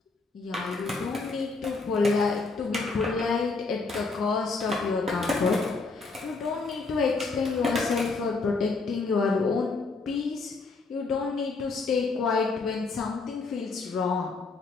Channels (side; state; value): right; quieter; 4.0 dB